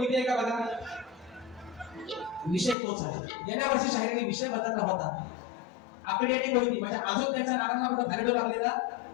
आहे का? बघा, विषय तोच आहे. गेल्या वर्षी शाहिराने विषय बदलला होता. आकडी आणि कोणती म्हणजे अजून त्याच्या नारांना कुठं फायदा लागलेला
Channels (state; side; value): drops out; right; at 2.8 s